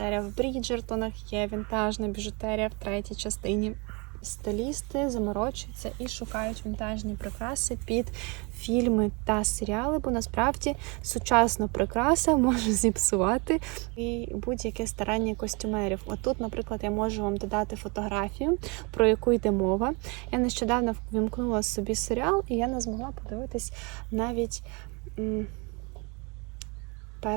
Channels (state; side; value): quieter; left; 30.1 dB